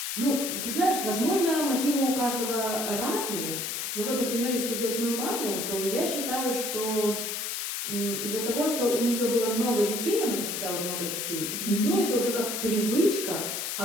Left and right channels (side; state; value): left; noise; hiss, 3 dB below the sound